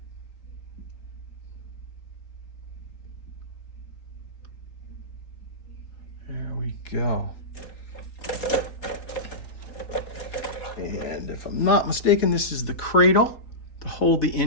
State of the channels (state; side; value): late; right; 3.8 ms